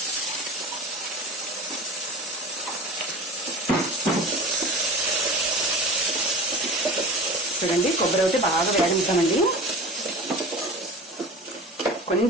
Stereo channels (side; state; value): both; normal; correlation 0.35